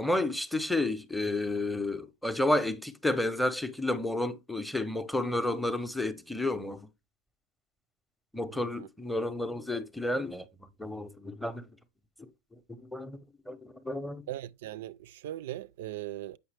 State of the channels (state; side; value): normal; both; correlation 0.80